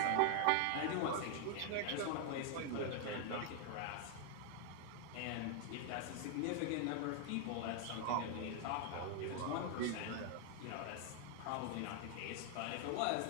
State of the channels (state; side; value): different; both; correlation 0.00